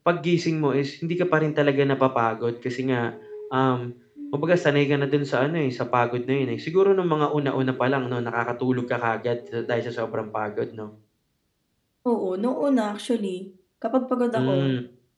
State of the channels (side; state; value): both; identical; correlation 1.00